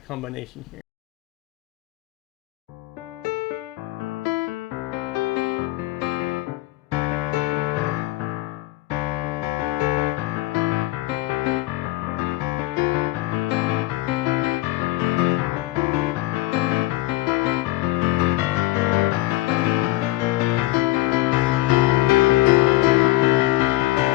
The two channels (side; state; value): right; quieter; 18.2 dB